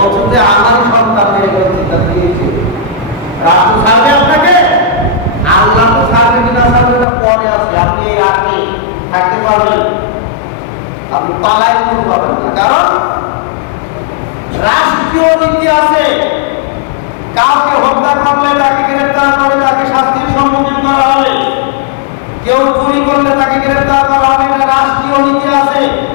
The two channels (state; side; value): drops out; right; at 7.1 s